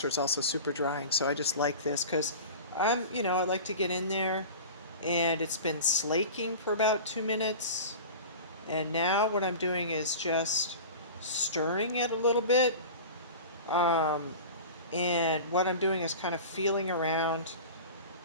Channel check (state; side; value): inverted; both; correlation -0.34